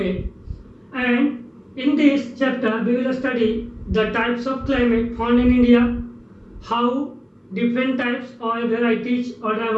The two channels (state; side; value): identical; both; correlation 1.00